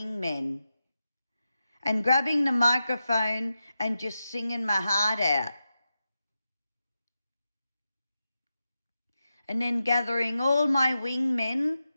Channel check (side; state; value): both; inverted; correlation -0.90